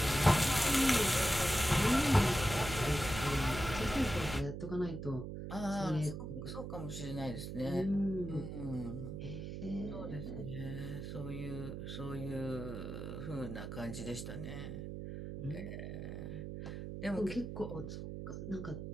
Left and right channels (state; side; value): noise; right; hum, 7 dB below the sound